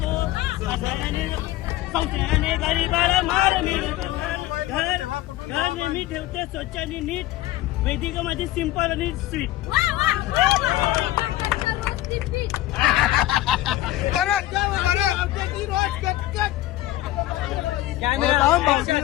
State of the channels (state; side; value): quieter; right; 15.7 dB